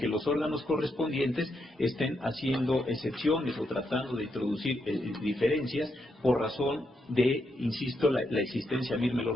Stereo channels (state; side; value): normal; both; correlation 0.81